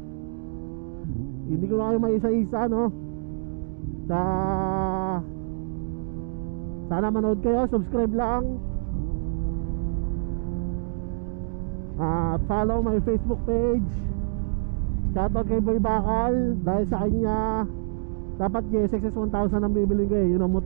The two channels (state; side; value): silent; left; digital silence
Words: Hindi ko na kayo maisa-isa, no? Sana manood kayo, subscribe lang. At follow my Facebook page. Shoutout kay Boy Bakal. Dahil sa kanya dapat GSX 1000 ang bibilin ko eh. Yun ang